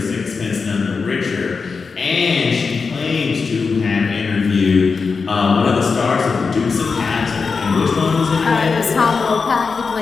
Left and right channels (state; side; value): quieter; right; 4.9 dB